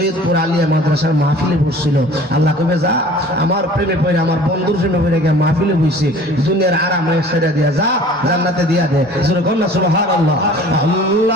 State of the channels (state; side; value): normal; both; correlation 0.47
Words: আলিয়া মাদ্রাসার মাহফিলে বসছিল। আল্লাহ কবে যা আমার প্রেমে পড়ে, আমার বন্ধুর প্রেমে পড়ে গিয়ে মাহফিলে বসে দুনিয়ার আরাম ছেড়ে দিয়া যা, জান্নাতে দিয়া দে। সুবহানাল্লাহ, সুবহানাল্লাহ।